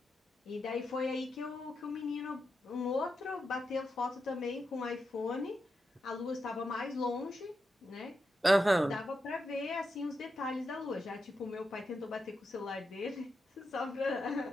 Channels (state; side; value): normal; both; correlation 0.87